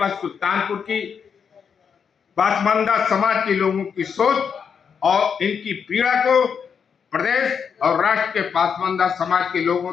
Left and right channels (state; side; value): quieter; right; 6.7 dB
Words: सुल्तानपुर की पासमानदा समाज के लोगों की सोच और इनकी पीड़ा को प्रदेश और राष्ट्र के पासमानदा समाज के लोगों